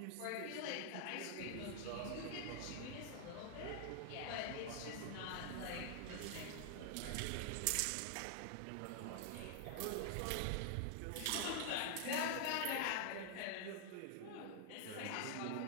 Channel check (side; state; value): both; different; correlation 0.00